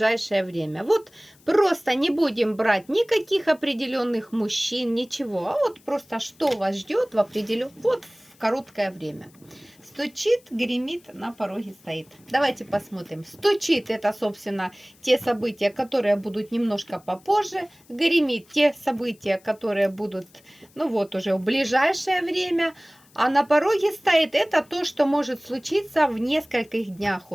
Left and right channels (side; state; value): left; noise; hiss, 29 dB below the sound